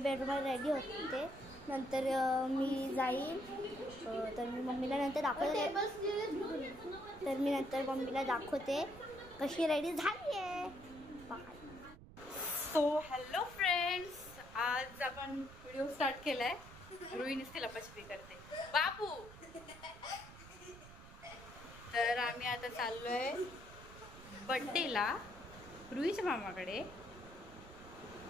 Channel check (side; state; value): right; noise; rumble, 17 dB below the sound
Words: रेडी होते. नंतर मी जाईल, तर मी मम्मीला नंतर दाखवते. तर मी नंतर मम्मीला दाखवते कशी रेडी झाली आहे. सो हॅलो फ्रेंड्स, आज आपण व्हिडिओ स्टार्ट केलाय. रुईनीच लपाछपी करते बाबू. तर आम्ही आता चाललोय बर्थडेला रुईच्या मामाकडे.